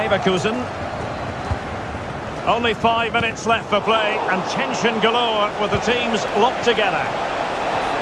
Only 5 minutes left for play, and tension galore with the teams locked together.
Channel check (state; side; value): identical; both; correlation 1.00